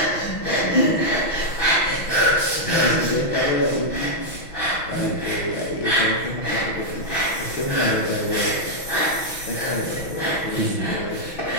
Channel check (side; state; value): right; late; 6.2 ms